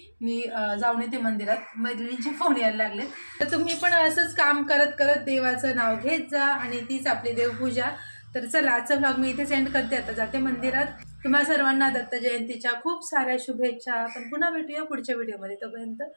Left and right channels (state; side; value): inverted; both; correlation -1.00